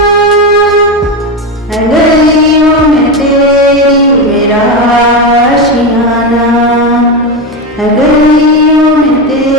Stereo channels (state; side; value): normal; both; correlation 0.15